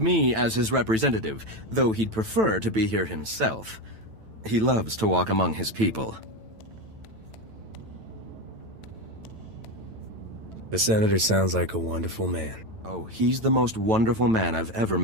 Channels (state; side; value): late; left; 9.0 ms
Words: as his representative, though he'd prefer to be here himself. He loves to walk among his people. The Senator sounds like a wonderful man. Oh, he's the most wonderful man I've ever